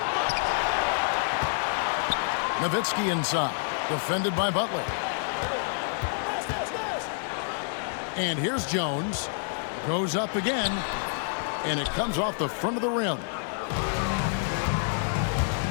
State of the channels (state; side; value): silent; right; digital silence